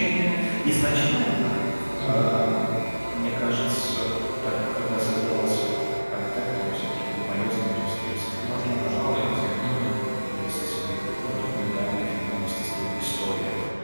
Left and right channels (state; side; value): inverted; both; correlation -1.00